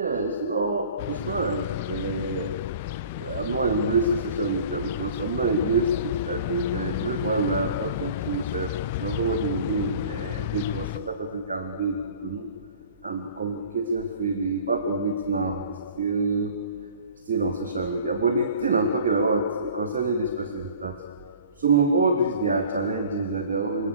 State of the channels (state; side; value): inverted; both; correlation -0.45